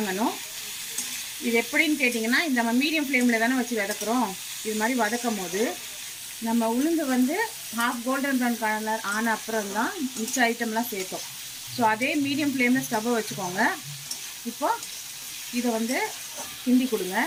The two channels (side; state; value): both; identical; correlation 1.00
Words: இது எப்படின்னு கேட்டிங்கன்னா, இந்த நம்ம மீடியம் ஃப்ளேமில் தானே வச்சு வதக்குறோம். இது மாதிரி வதக்கும் போது நம்ம உளுந்து வந்து ஹாஃப் கோல்டன் ப்ரௌன் கலர் ஆன அப்புறம் தான் மிச்ச ஐட்டம்லாம் சேர்த்தோம். ஸோ அதே மீடியம் ஃப்ளேமில் ஸ்டவ்வை வச்சுக்கோங்க. இப்போது இதை வந்து கிண்டி கொடுங்க.